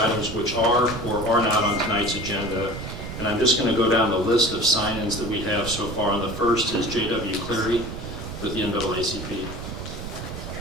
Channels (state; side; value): noise; right; rumble, 9 dB below the sound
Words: which are or are not on tonight's agenda. And I'm just going to go down the list of sign-ins that we have so far. And the first is J.W. Cleary with the NAACP.